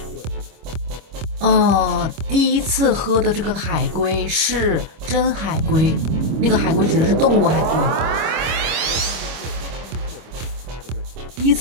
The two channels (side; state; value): left; late; 25 ms